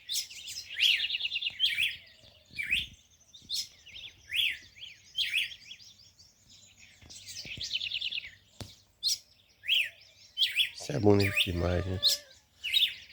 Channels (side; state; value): both; identical; correlation 1.00